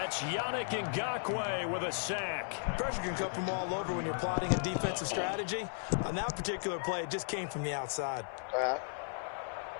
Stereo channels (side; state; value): right; silent; 54 dB below the other